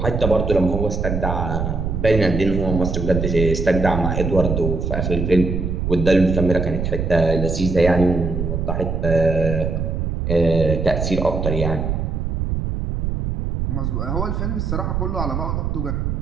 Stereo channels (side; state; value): right; noise; rumble, 2 dB below the sound